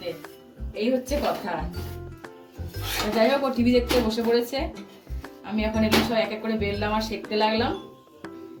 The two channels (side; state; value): both; identical; correlation 1.00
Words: এই হচ্ছে কথা। যাই হোক ও টিভি দেখতে বসে পড়েছে, আমি এখন এগুলো সব এক এক করে বেললাম আর সেঁকতে লাগলাম।